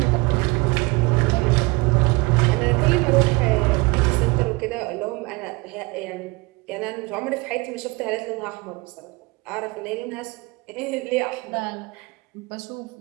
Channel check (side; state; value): left; quieter; 25.1 dB